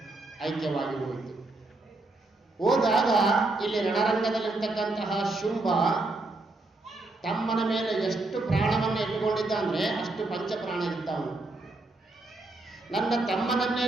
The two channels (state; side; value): quieter; left; 3.0 dB